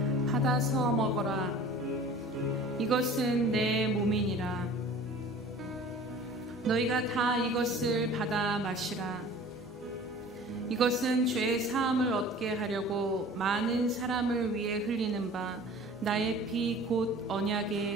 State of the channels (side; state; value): both; normal; correlation 0.44